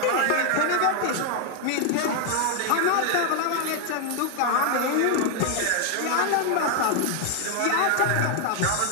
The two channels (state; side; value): different; both; correlation 0.00